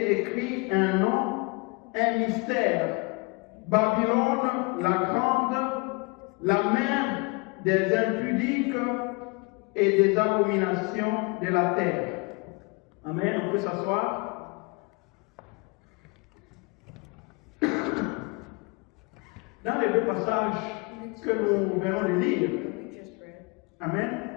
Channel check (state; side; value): quieter; right; 29.0 dB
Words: écrit un nom, un mystère: Babylone la grande, la mère des impudiques et des abominations de la terre. Amen. On peut s'asseoir. Dans les 2 passages que nous venons de lire, Amen,